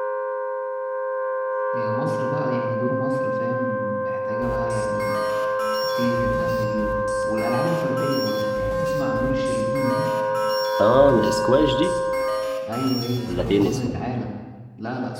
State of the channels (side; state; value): both; identical; correlation 1.00